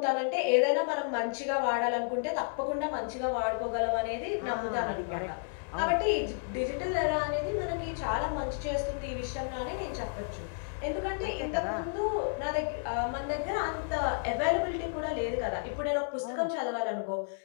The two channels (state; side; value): silent; right; 57 dB below the other